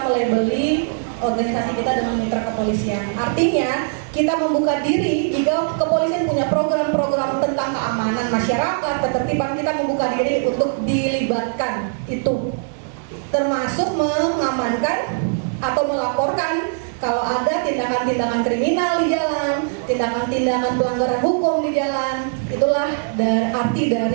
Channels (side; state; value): left; silent; digital silence